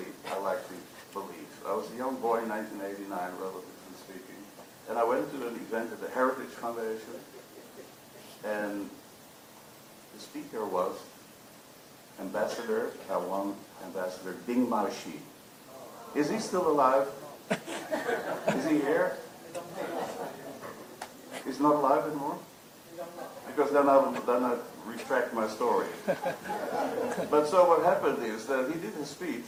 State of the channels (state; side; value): identical; both; correlation 1.00